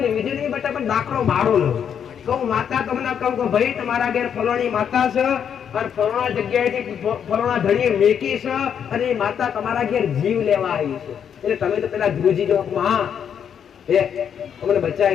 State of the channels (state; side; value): quieter; right; 8.1 dB